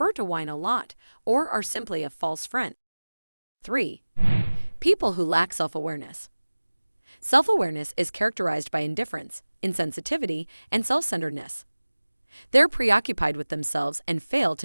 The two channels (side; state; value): both; inverted; correlation -1.00